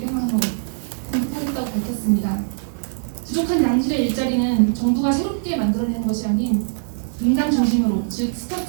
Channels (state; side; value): silent; left; 64 dB below the other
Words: 공급하겠다고 밝혔습니다. 부족한 양질의 일자리는 정부가 새롭게 만들어내는 것이 아닌 민간 중심으로, 즉